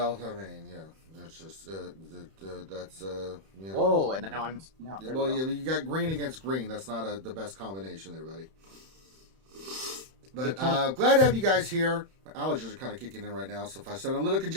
I mean, yeah. That's just, that's, yeah. Whoa, and now well, you got green against green. That's not the best combination there, buddy. But glad to have you guys here. My allergies are kind of kicking in right now, so if I sound a little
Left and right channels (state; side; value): late; left; 31 ms